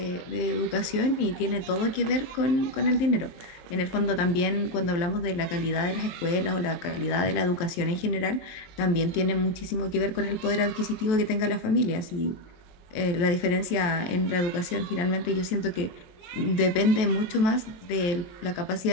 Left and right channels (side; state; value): right; late; 23 ms